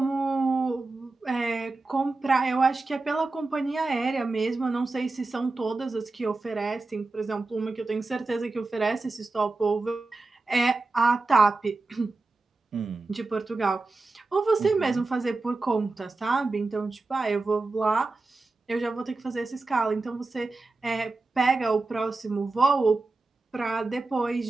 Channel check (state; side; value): quieter; left; 3.4 dB